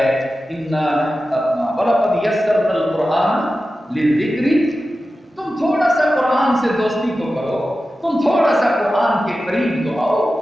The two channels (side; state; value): both; normal; correlation 0.93